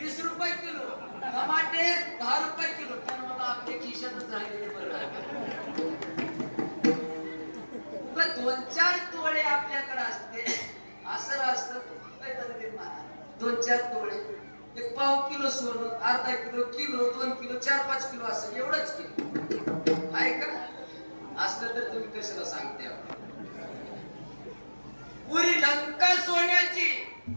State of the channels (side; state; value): both; inverted; correlation -1.00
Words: रुपये किलो, टमाटे 10 रुपये किलो. पण मला आपल्या खिशातच राहिलेले बरं. 2-4 तोळे आपल्याकडे असते असं असतं. 2-4 तोळे, 1 पाव किलो सोनं, अर्धा किलो, किलो, 2 किलो, 4-5 किलो असं एवढंच किलो आहे का? असलं तर तुम्ही कशाला सांगते. पुरी लंका सोन्याची